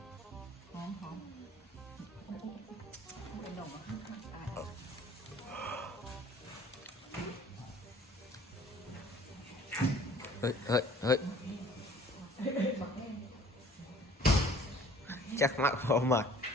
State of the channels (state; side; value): normal; both; correlation 0.52